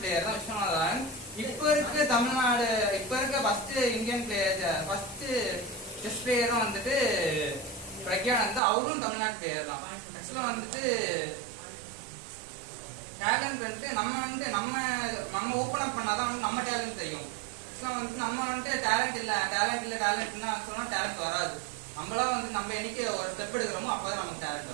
தான் விஸ்வநாதன். இப்போ இருக்க first Indian player first chess பிளேயரும் வந்துட்டு பிரக்யானந்தா, அவரும் தமிழ்நாட்டு பிளேயர் தான். ஆக்சுவலா வந்துட்டு டேலண்ட் வந்துட்டு நம்ம ஓப்பன் அப் பண்ணாதான் வந்து நம்ம டேலண்ட் தெரியும். ஆக்சுவலா வந்துட்டு நம்ம வந்துட்டு டேலண்ட்னா சொன்னா டேலண்ட் வராது. நம்மளாம் வந்து நம்ம என்னைக்கு ஒரு ஸ்டெப் எடுக்கிறோமோ அப்பதான் நமக்கு டேலண்ட்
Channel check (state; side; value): drops out; left; at 8.6 s